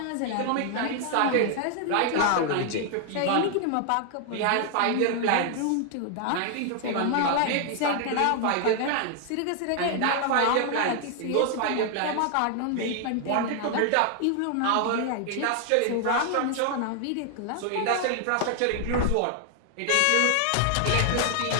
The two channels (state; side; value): different; both; correlation 0.00